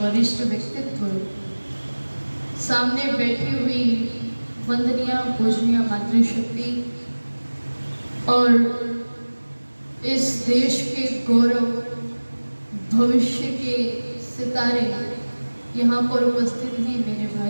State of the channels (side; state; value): both; inverted; correlation -1.00